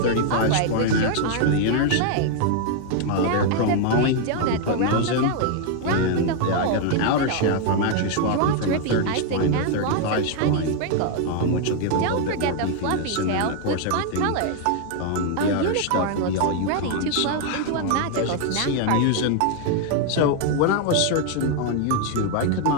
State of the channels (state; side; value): different; both; correlation 0.00